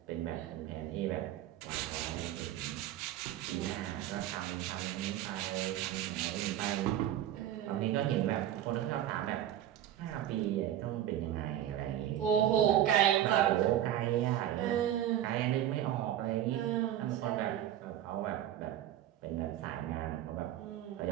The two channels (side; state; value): left; quieter; 11.9 dB